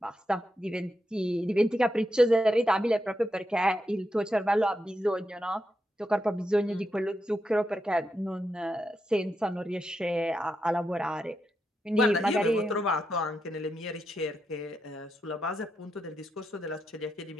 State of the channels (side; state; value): both; normal; correlation 0.85